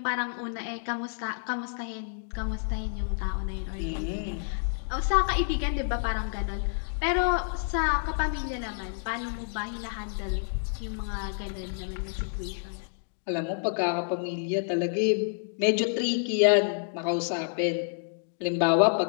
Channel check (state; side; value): silent; right; digital silence